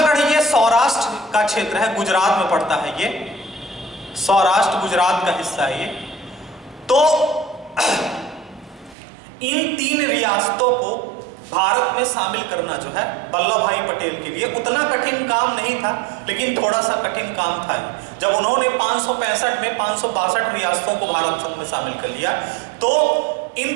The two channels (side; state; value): left; drops out; at 9.0 s